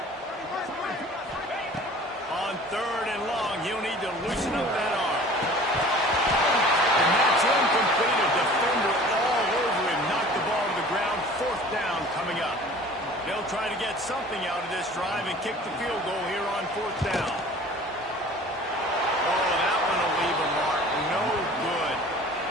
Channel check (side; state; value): both; normal; correlation 0.46